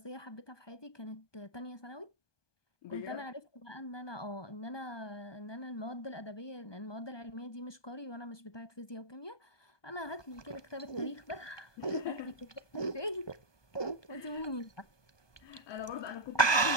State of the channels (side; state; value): right; late; 1.2 ms